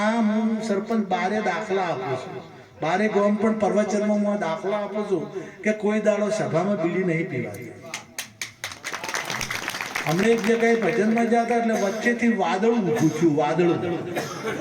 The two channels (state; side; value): identical; both; correlation 1.00